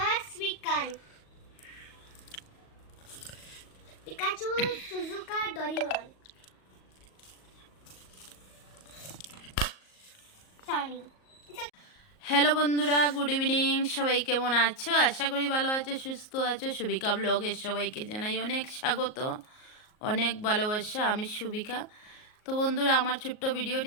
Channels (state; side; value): late; right; 38 ms